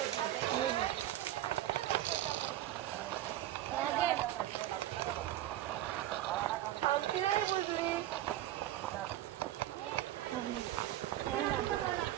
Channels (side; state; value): left; quieter; 13.5 dB